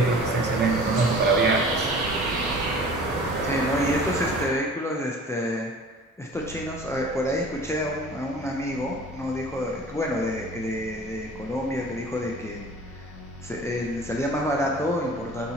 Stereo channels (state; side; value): normal; both; correlation 0.44